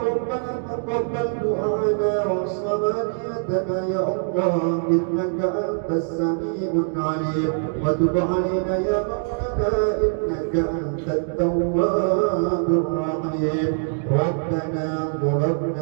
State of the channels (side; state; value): left; silent; digital silence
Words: ربنا تقبل دعاءنا وصلاتنا يا الله، إنك أنت السميع العليم، وتب علينا يا مولانا إنك أنت التواب الرحيم. ربنا